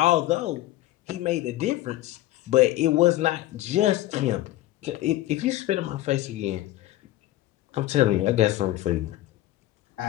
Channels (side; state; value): right; quieter; 15.6 dB